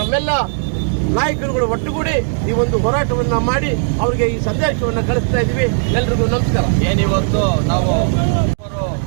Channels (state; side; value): silent; left; digital silence